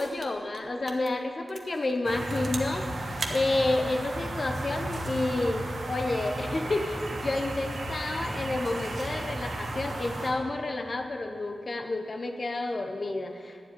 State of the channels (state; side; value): normal; both; correlation 0.94